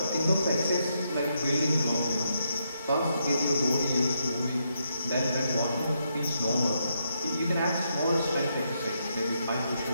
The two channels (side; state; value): both; inverted; correlation -0.79